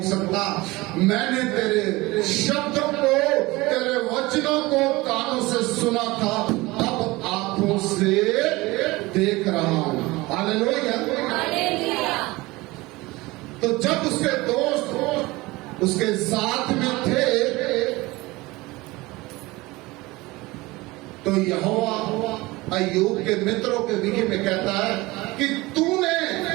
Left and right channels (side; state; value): left; quieter; 21.3 dB